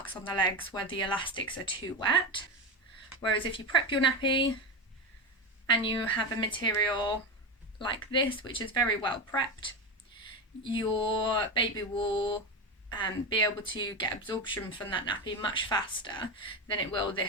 on the legs where the elastics are too wet. Whereas if you prep your nappy and you have a material like this, which is very well prepped, your baby will be able to get absorption from that nappy much faster than it will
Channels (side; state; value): both; normal; correlation 0.17